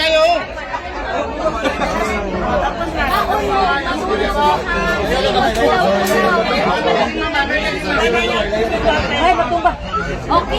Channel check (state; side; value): identical; both; correlation 1.00